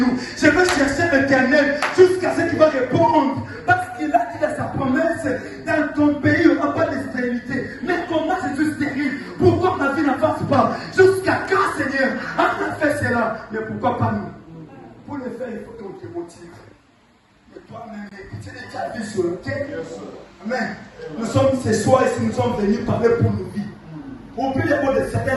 Je veux chercher l'Éternel jusqu'à ce qu'il va répondre. Parce qu'il a dit dans sa promesse, dans ton pays, il n'y aura pas de stérilité. Mais comment je suis stérile? Pourquoi ma vie n'avance pas? Jusqu'à quand, Seigneur? On a fait cela. Mais pourquoi pas nous? Pour le faire, il faut qu'on te motive. Mais toi-même, tu es déjà vu sur le terre. Amen. Nous sommes ce soir ici, nous sommes venus parler pour nos vies. Au plus de mots de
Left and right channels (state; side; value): identical; both; correlation 1.00